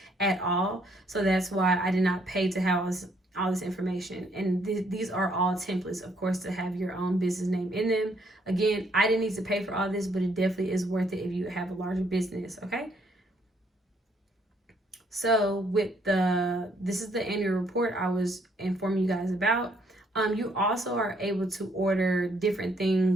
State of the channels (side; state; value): both; normal; correlation 0.68